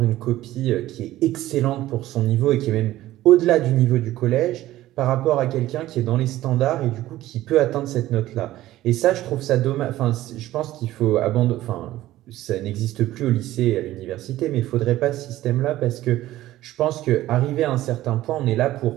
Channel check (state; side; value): quieter; left; 15.2 dB